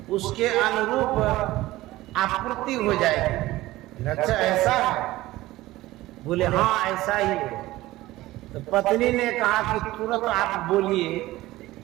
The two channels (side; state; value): left; quieter; 17.4 dB